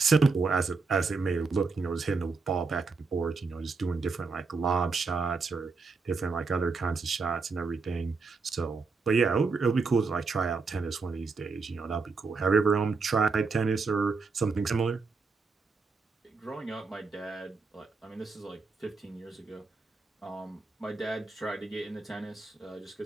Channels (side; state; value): left; quieter; 4.4 dB